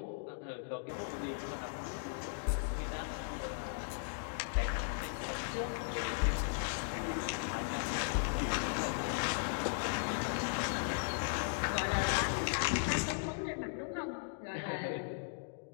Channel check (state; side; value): silent; right; digital silence